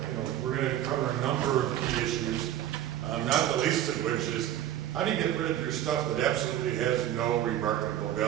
We're going to cover a number of key issues, not the least of which is how do you get rid of your stuff that absolutely has no remarkable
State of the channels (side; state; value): left; quieter; 12.0 dB